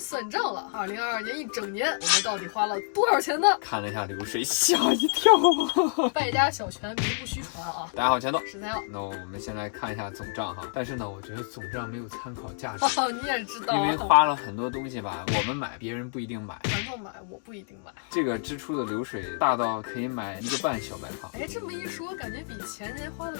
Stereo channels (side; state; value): right; silent; 59 dB below the other